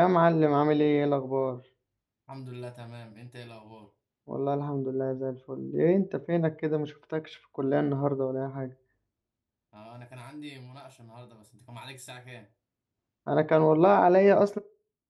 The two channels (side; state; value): both; identical; correlation 1.00